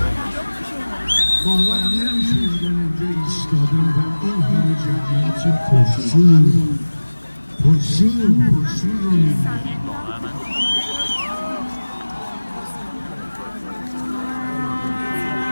باورم نمیشه اینجا ایستادم و این همه جمعیت پرشور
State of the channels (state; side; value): inverted; both; correlation -1.00